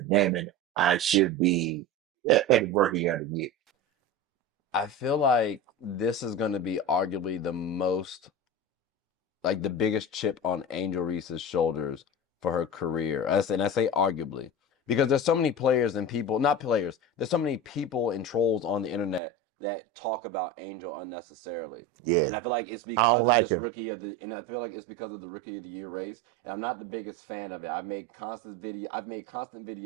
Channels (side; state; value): left; drops out; at 19.2 s